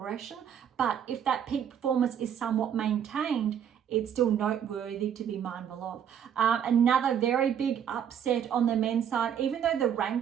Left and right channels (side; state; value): left; quieter; 8.8 dB